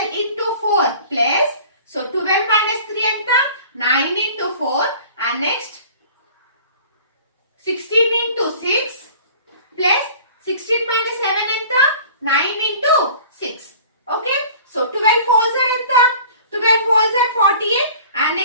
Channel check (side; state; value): both; inverted; correlation -0.46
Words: into 4 ప్లస్, సో 12 minus 3 ఎంత 9 into 4 and next 16 into 6 plus 16 minus 7 ఎంత 9 into 6. Okay, so 12 4s are ఎంత 12 4s are 48 and